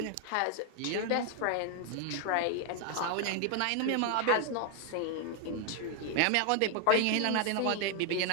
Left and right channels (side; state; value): both; different; correlation 0.00